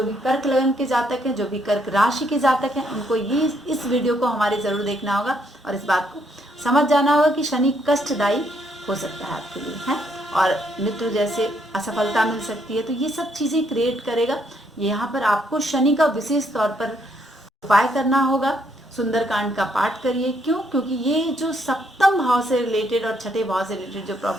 भी कर्क लगन के जातक हैं, जो भी कर्क राशि के जातक हैं, उनको ये इस वीडियो को हमारे ज़रूर देखना होगा और इस बात को समझ जाना होगा कि शनि कष्टदायी हो सकता है आपके लिए, है, और मित्र जैसे असफलता मिल सकती है। तो ये सब चीज़ें क्रिएट करेगा। यहाँ पर आपको शनि का विशेष तौर पर उपाय करना होगा। सुंदरकांड का पाठ करिए। क्यों? क्योंकि ये जो सप्तम भाव से रिलेटेड और छठे भाव से रिलेटेड जो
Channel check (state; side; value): normal; both; correlation 0.72